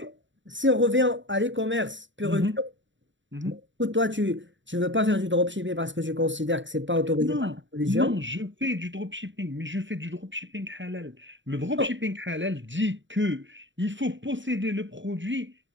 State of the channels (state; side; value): late; left; 0.54 ms